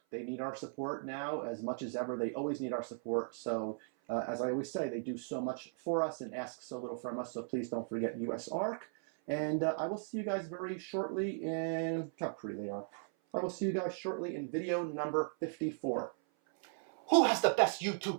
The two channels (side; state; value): left; silent; 53 dB below the other